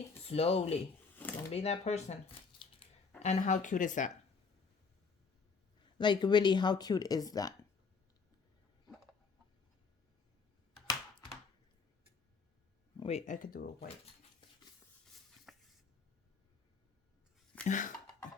slowly. Don't be that person. And how cute is that? Like, really, how cute is that? Wait, I could do it white.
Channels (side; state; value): right; quieter; 5.0 dB